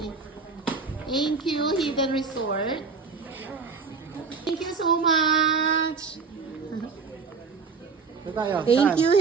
Thank you, Hidden Resort. Thank you so much. Thank you,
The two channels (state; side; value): quieter; left; 4.9 dB